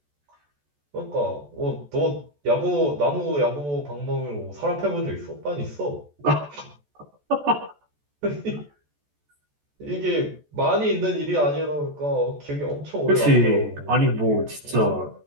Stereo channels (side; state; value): left; late; 14 ms